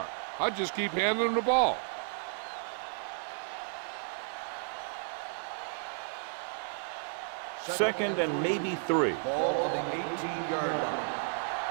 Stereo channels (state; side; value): silent; left; 56 dB below the other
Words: I just keep handing him the ball. Second and maybe 3. Ball on the 18-yard line.